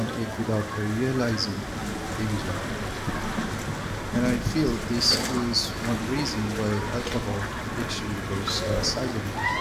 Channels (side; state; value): both; identical; correlation 1.00